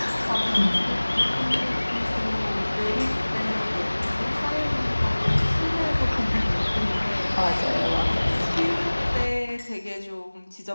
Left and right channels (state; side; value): inverted; both; correlation -1.00